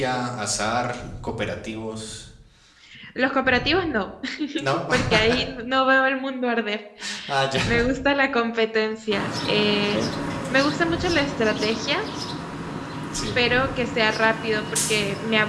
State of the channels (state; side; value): identical; both; correlation 1.00